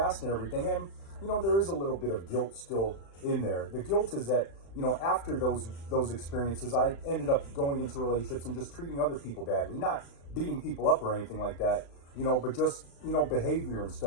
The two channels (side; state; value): right; late; 36 ms